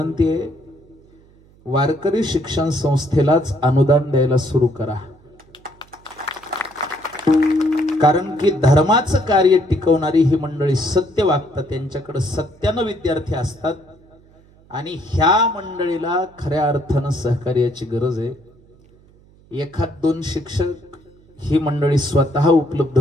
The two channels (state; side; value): noise; right; hum, 28 dB below the sound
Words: आहे, वारकरी शिक्षण संस्थेलाच अनुदान द्यायला सुरू करा. कारण की धर्माचं कार्य टिकवणारी ही मंडळी सत्य वागतात, त्यांच्याकडे सत्यानं विद्यार्थी असतात आणि ह्या मंडळीला खऱ्या अर्थानं सहकार्याची गरज आहे. एखाद दोन शिक्षक ही मंडळी स्वतः उपलब्ध